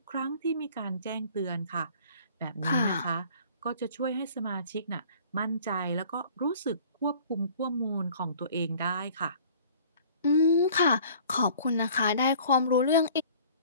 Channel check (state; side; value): inverted; both; correlation -0.50